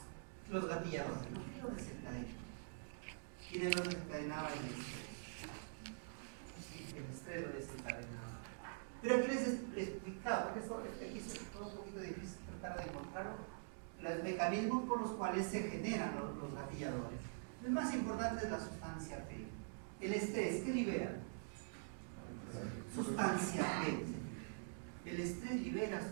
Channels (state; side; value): silent; left; digital silence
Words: Los gatilladores, ¿no? ¿Qué lo desencadenaba? ¿Quién lo desencadenaba? El estrés. Sí, el estrés lo desencadenaba. Pero aquí les explicaba, porque esto aquí es un poquito difícil tratar de encontrarlo, los mecanismos por los cuales se generan los gatilladores. El más importante es la sustancia P. El estrés, ¿qué libera? Sustancia P. El estrés libera